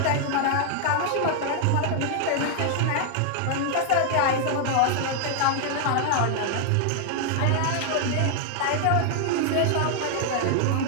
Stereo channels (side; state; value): both; different; correlation 0.00